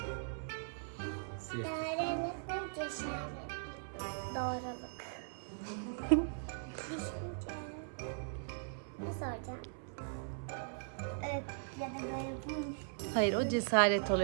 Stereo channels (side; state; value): left; silent; 52 dB below the other